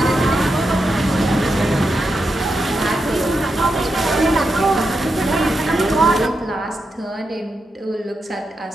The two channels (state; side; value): normal; both; correlation 0.86